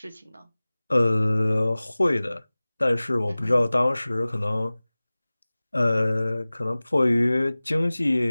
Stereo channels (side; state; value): both; inverted; correlation -0.99